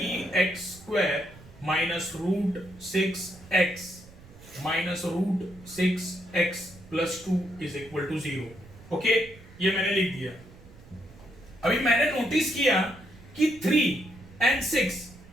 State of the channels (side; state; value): right; noise; rumble, 21 dB below the sound